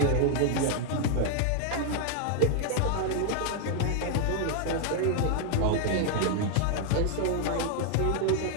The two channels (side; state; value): both; different; correlation 0.00